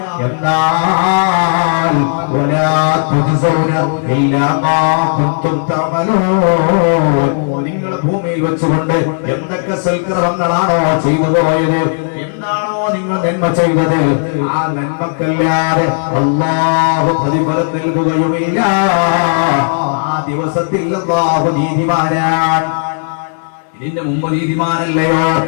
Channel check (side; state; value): right; silent; digital silence